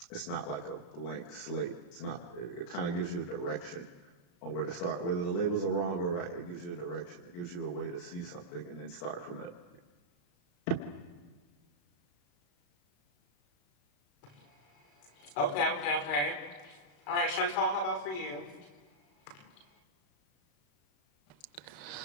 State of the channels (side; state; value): right; late; 34 ms